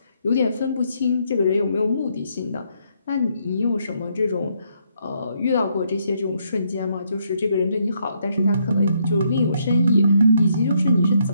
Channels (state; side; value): inverted; both; correlation -0.74